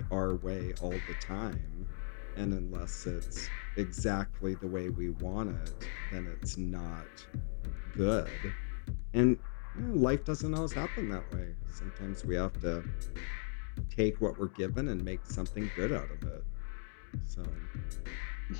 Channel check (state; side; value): silent; right; 53 dB below the other